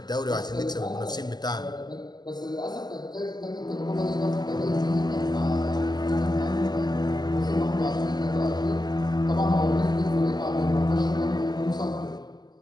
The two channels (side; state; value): right; late; 0.20 ms